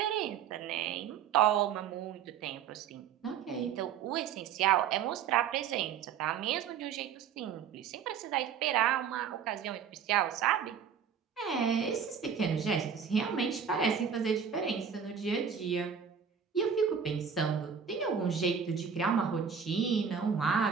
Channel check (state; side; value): quieter; left; 7.4 dB